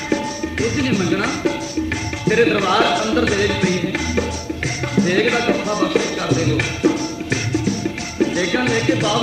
कुछ नहीं मंगना तेरे दरबार अंदर देग पई है। देग का कथा बख्शिश कर दे लो। देगा लेके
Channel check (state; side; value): identical; both; correlation 1.00